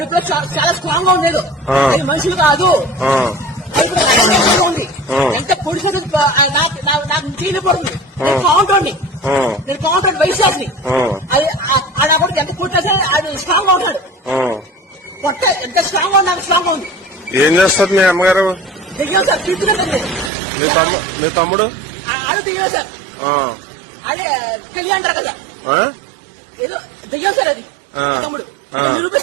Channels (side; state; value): left; drops out; at 20.3 s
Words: చాలా స్ట్రాంగ్ గా ఉండేది. అది మనుషులు కాదు. ఉంది ఎంత పొడిసే నాకు చేయలేకపోతుంది. నేను కౌంటర్ని వైశాఖని అది ఆడ కూడా ఎంత కొట్టేసా అది స్ట్రాంగ్ గా ఉంటాడు. పొట్ట ఎంత స్ట్రాంగ్ గా నాకు స్ట్రాంగ్ గా ఉంది. ఏం చేస్తారు మీ అమ్మగారు? దిగాం సార్, తీసుకున్నాను. మీ తమ్ముడు అది దిగాం సార్. అదే కలిగి అంటారు కదా, ఏదో దిగాం సార్. అది తమ్ముడు